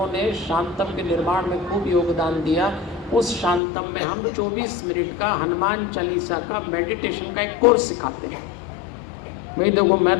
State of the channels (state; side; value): drops out; right; at 3.6 s